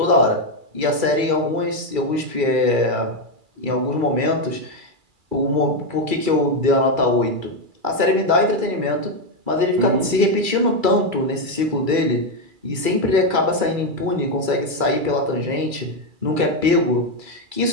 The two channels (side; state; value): left; late; 2.3 ms